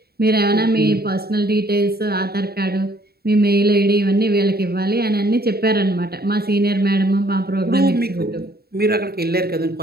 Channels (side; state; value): left; late; 0.45 ms